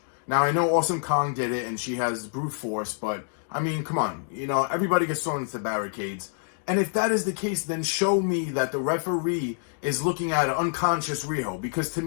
Now, I know Awesome Kong did it, and she has brute force, but, I mean, come on. Everybody gets thrown into the barricades. And if that is the case, then show me that the referee is looking at an unconscious Riho. Because to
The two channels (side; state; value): right; silent; digital silence